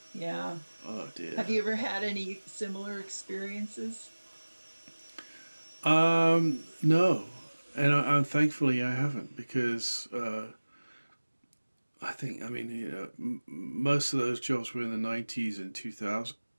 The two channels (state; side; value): inverted; both; correlation -1.00